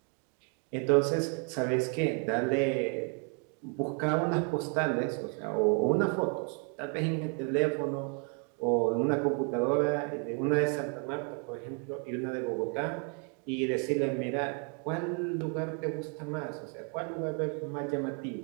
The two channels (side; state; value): left; quieter; 39.0 dB